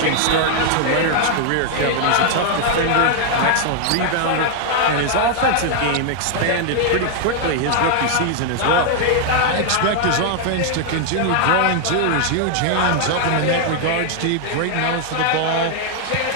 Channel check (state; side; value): different; both; correlation 0.00